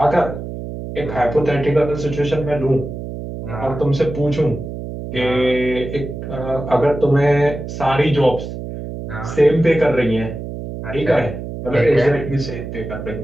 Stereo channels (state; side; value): noise; right; hum, 8 dB below the sound